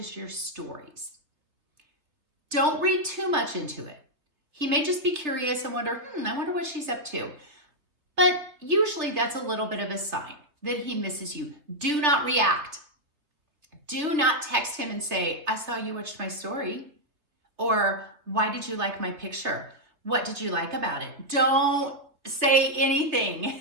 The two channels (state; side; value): late; left; 3.3 ms